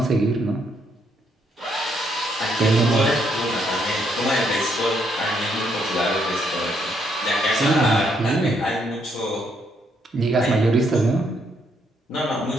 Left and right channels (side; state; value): both; normal; correlation 0.73